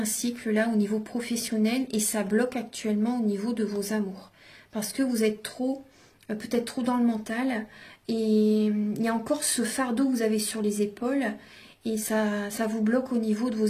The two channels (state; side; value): identical; both; correlation 1.00